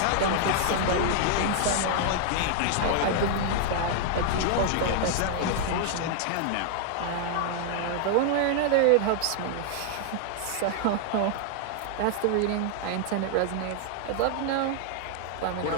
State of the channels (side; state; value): both; different; correlation 0.00